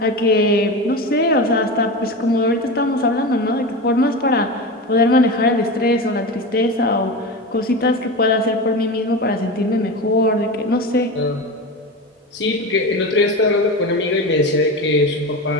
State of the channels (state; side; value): normal; both; correlation 0.24